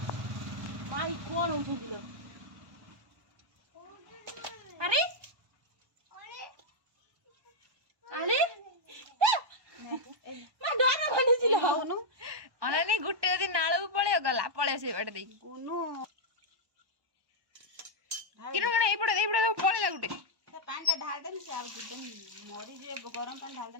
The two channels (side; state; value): left; late; 1.1 ms